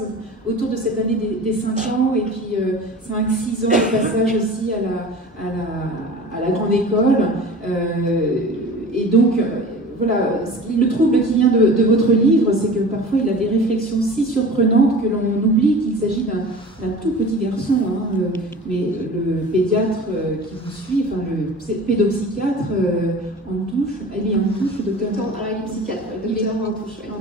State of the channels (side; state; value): both; normal; correlation 0.39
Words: autour de cette année des 5 ans, et puis 5-6 ans de passage aussi à la grande école. Et donc, voilà, le trouble qui vient de votre livre, c'est que parfois il a des réflexions si surprenantes que l'on oublie qu'il s'agit d'un tout petit garçon. Hein, mais le pédiatre qui vous suit, enfin le pédopsychiatre en touche, elle est en touche, le docteur. Alors il est psychiatre, le docteur en touche.